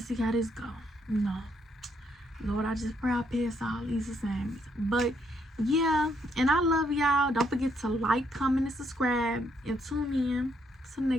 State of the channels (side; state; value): both; normal; correlation 0.73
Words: see how this go. No. Lord, I just pray I pass all these assignments. But yeah, and I love y'all. Don't forget to like, comment, and subscribe. And tune in to the